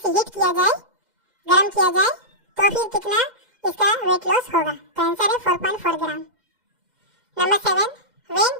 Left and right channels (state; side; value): late; left; 2.0 ms